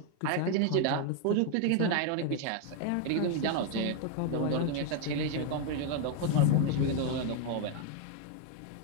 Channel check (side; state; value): both; different; correlation 0.01